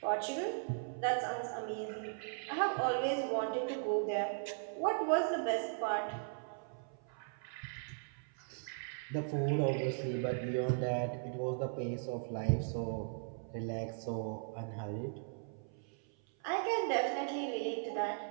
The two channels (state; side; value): silent; left; 52 dB below the other